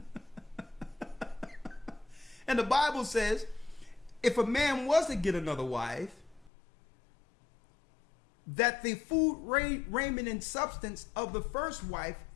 And the Bible says, if a man was to get another wife, that the food, raiment, and substance of the first wife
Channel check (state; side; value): drops out; right; at 6.5 s